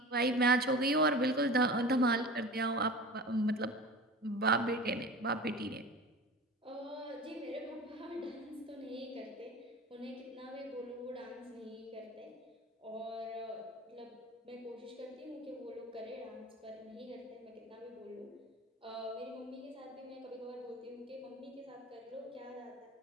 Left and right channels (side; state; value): both; normal; correlation 0.35